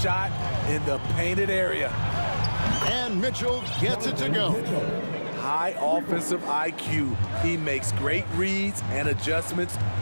shot in the painted area. And Mitchell gets it to go. High offensive IQ. He makes great reads and adjustments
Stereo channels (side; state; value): both; inverted; correlation -1.00